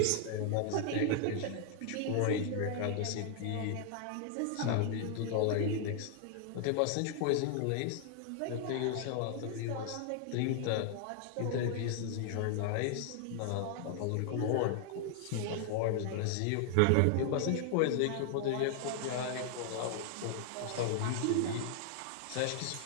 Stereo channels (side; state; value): both; different; correlation 0.00